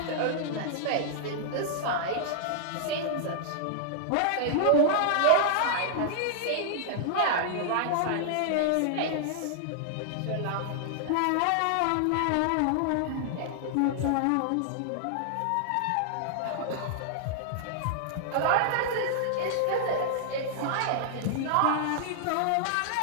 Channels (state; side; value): different; both; correlation -0.01